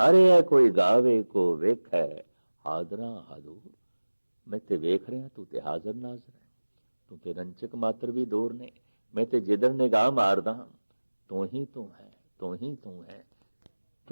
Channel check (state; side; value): inverted; both; correlation -1.00